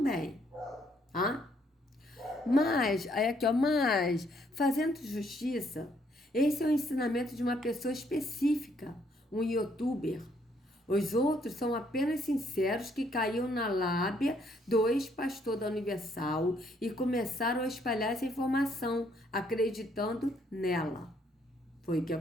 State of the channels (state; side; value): normal; both; correlation 0.69